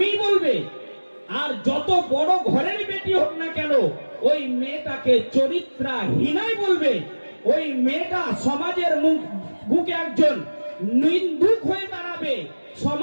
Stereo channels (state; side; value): inverted; both; correlation -1.00